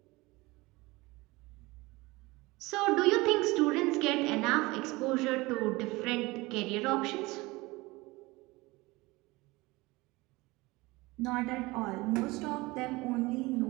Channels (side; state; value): left; quieter; 22.1 dB